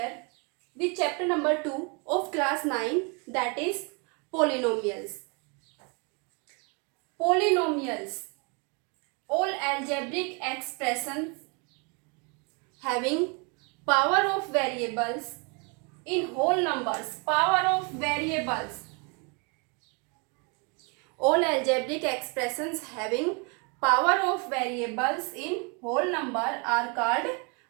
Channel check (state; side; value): quieter; left; 32.8 dB